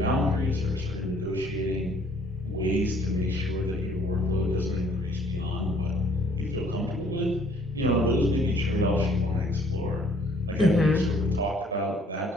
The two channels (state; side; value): normal; both; correlation 0.60